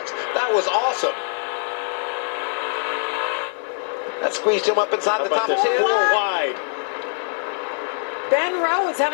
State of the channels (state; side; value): silent; right; 58 dB below the other